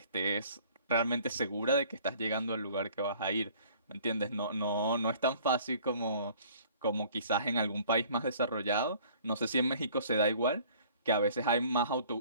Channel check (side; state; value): both; inverted; correlation -0.54